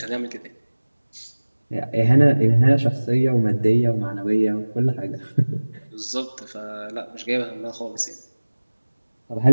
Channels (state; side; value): inverted; both; correlation -1.00